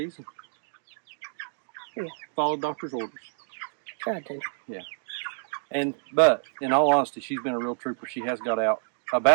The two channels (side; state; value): left; silent; digital silence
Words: And Yeah. Followed doctor's orders. Tried to. Yeah. But in all honesty, she's been a real trooper. She has got out